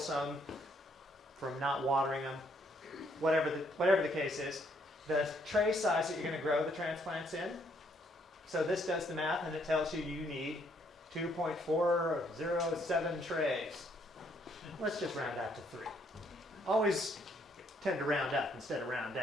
from not watering them, whatever the case is. The tray size that you're going to grow the transplants in. So this does the math and it tells you you need 2.407 trays. Let's just round out to 3. Always tend to round up instead of round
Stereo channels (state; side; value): normal; both; correlation 0.69